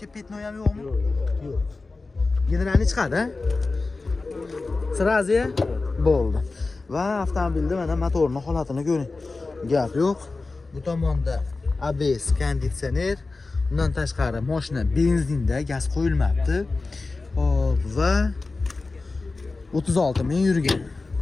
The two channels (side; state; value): right; quieter; 3.7 dB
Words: petnoy ham yo'qmi? Yo'q. Generalni chiqadi. Srazi bo'ldi. Va avtomobilda mana motorning holatini ko'ring. Gap yo'q. Bu tomonda ABS, konditsioner, undan tashqari mashina benzinda, gaz qo'yilmabdi. Hop, va 36000 yurgan.